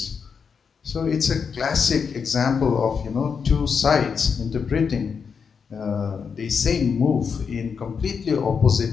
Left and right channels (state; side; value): quieter; right; 6.1 dB